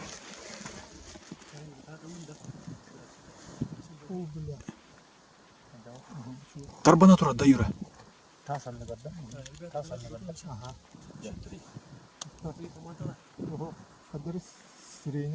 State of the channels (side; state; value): both; identical; correlation 1.00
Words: Tarbana turar da yura.